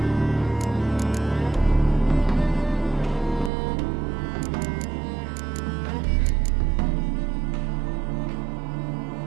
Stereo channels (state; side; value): drops out; left; at 3.5 s